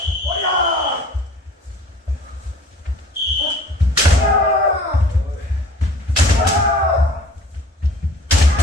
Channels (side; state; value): both; normal; correlation 0.47